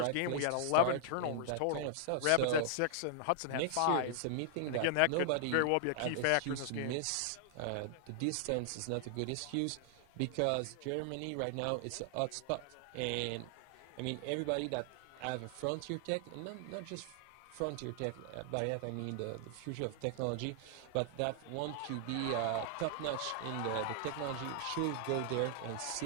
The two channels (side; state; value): both; different; correlation -0.01